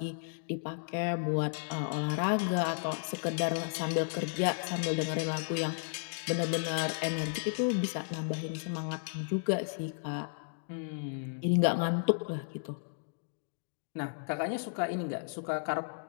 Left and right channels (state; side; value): silent; right; digital silence